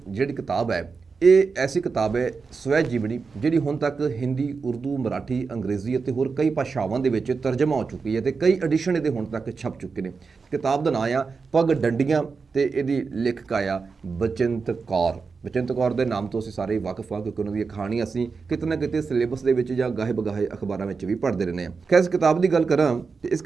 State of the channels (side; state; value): left; quieter; 4.9 dB